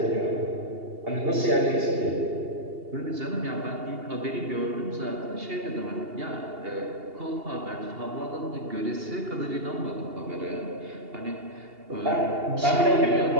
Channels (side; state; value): left; late; 2.8 ms